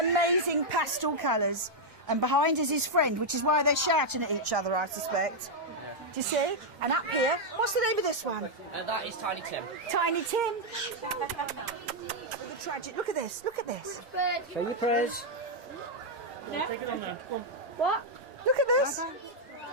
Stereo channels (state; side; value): normal; both; correlation -0.02